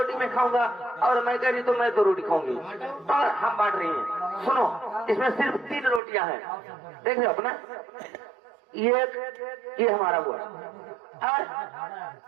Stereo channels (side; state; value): left; drops out; at 6.0 s